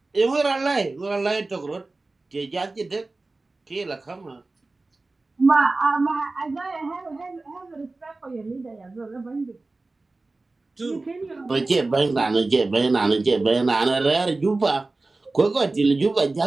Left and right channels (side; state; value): left; quieter; 3.3 dB